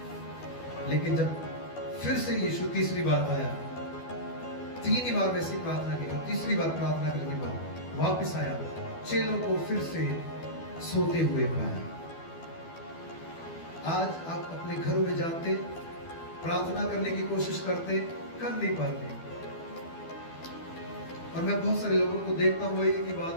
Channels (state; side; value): late; right; 12 ms